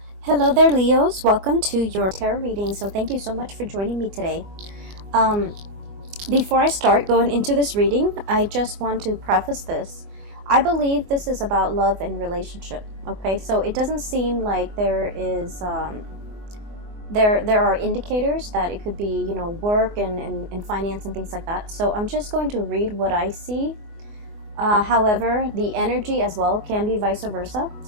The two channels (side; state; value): left; late; 24 ms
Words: Hello there, Leos. Welcome to your tarot reading. So thank you so much for joining me today. Um, Before I start going into this reading, I just want to preface this. I believe this is about love and relationship. Okay, so it doesn't seem like there is there are indicators that it could be, work and finance and things like that. So I'm just going to read what I see. However, the energy as well can be vice versa.